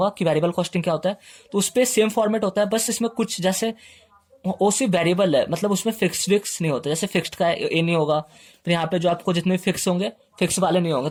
कि वेरिएबल कॉस्टिंग क्या होता है। तो उस पर सेम फॉर्मेट होता है, बस इसमें कुछ जैसे वो सिर्फ वेरिएबल है, मतलब उसमें फिक्स नहीं होता। जैसे फिक्स्ड का ये नहीं होगा, फिर यहाँ पे जो आपको जितने फिक्स होंगे फिक्स वाले नहीं होंगे,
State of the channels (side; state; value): both; identical; correlation 1.00